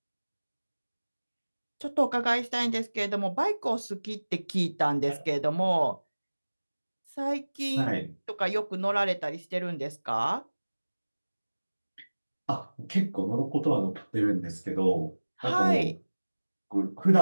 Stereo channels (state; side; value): inverted; both; correlation -1.00